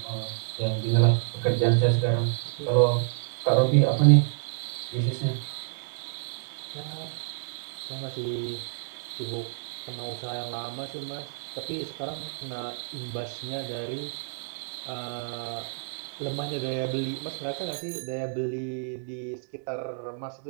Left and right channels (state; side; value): silent; left; digital silence